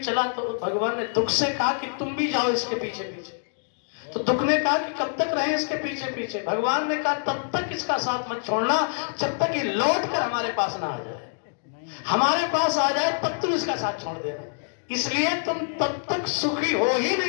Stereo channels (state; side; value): silent; right; digital silence